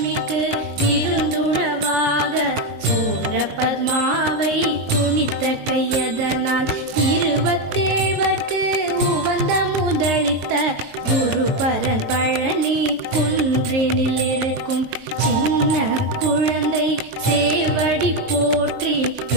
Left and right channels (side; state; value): left; late; 23 ms